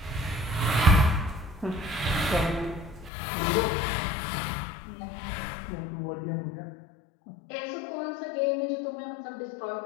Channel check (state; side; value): drops out; right; at 3.1 s